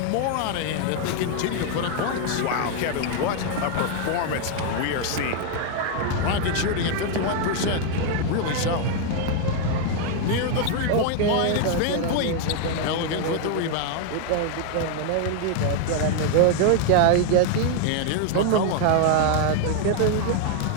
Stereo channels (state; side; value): different; both; correlation 0.00